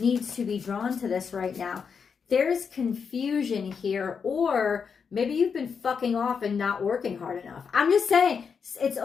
to be drawn to this right now. There's confusion here, or maybe you've been fucking off and not working hard enough. I'm just saying, it's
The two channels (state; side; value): quieter; right; 6.2 dB